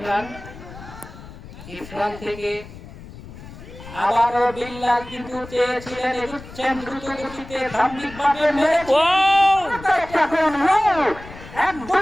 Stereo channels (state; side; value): noise; left; rumble, 16 dB below the sound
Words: ইরফান থেকে আবারও বিল্লাল কিন্তু চেয়েছিলেন, এগুচ্ছেন দ্রুত গতিতে ধার্মিকভাবে